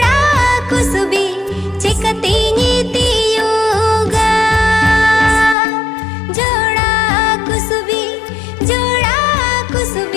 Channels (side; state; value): right; drops out; at 5.6 s